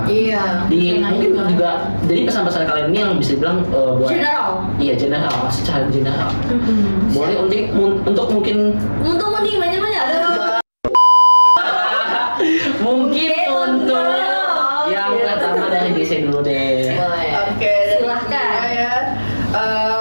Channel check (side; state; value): both; inverted; correlation -1.00